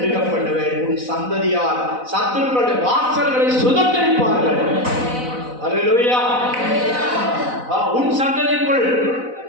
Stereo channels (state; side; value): late; left; 4.0 ms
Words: பண்ணுவேன். உன் சந்ததியார் சத்துருக்களுடைய வாசல்களை சுதந்திரிப்பார்கள். அல்லேலூயா. உன் சந்ததிக்குள்